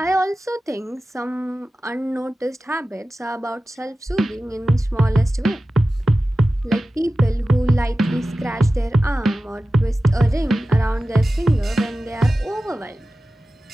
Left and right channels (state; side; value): normal; both; correlation 0.95